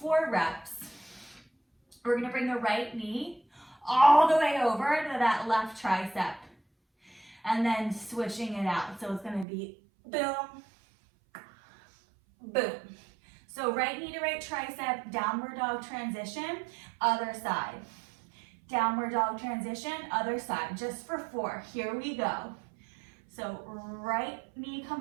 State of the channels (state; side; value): drops out; left; at 9.5 s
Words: reps. We're gonna bring the right knee all the way over to that left tricep. And then switching it out. So it's gonna be boom, boom. So right knee to right tricep, downward dog transition, other side. Downward dog transition, other side, just for 4. Here we go. So right knee